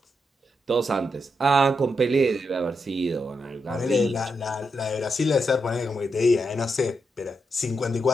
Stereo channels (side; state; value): both; normal; correlation 0.83